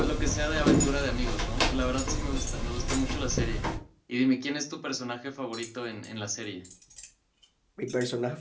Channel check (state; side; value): identical; both; correlation 1.00